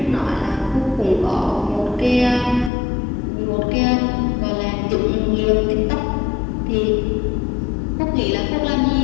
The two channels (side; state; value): right; drops out; at 2.7 s